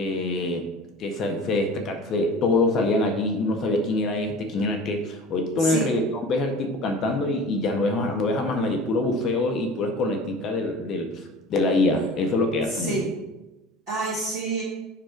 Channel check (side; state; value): both; normal; correlation 0.39